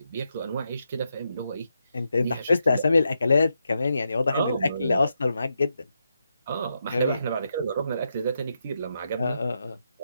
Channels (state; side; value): inverted; both; correlation -0.83